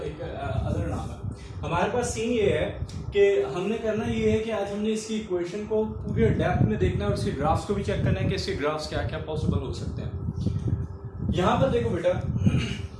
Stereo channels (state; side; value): identical; both; correlation 1.00